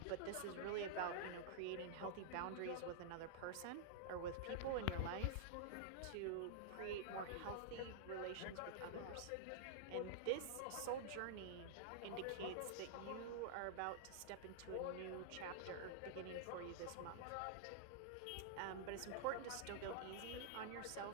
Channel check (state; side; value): different; both; correlation -0.02